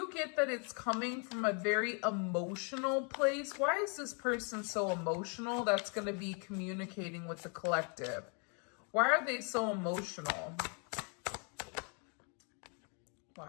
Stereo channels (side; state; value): right; quieter; 38.0 dB